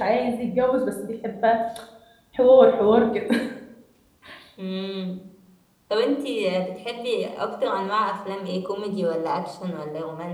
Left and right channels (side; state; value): both; identical; correlation 1.00